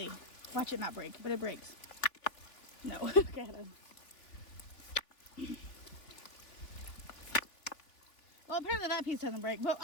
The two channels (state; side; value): late; right; 3.3 ms